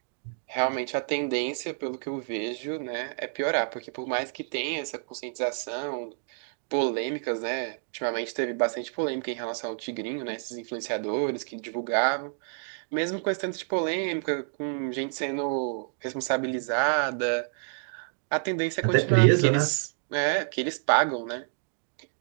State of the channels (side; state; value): left; silent; digital silence